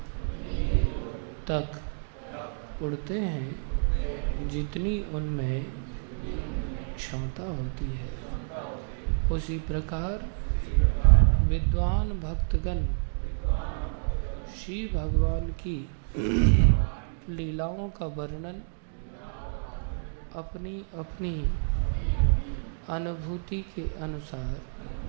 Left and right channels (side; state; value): left; silent; digital silence